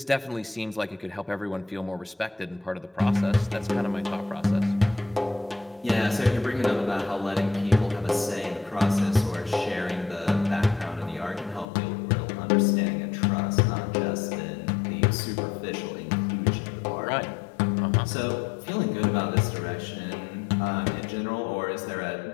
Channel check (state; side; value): drops out; right; at 11.7 s